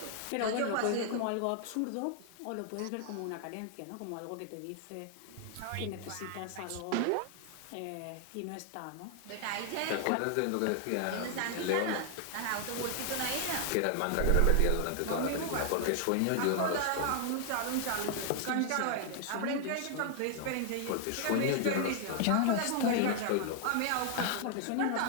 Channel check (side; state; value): both; different; correlation 0.00